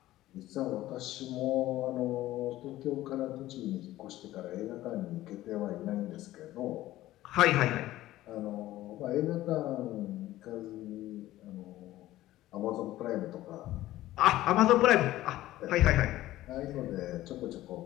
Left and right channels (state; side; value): quieter; right; 15.5 dB